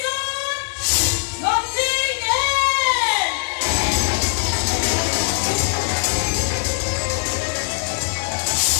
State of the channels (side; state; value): right; silent; digital silence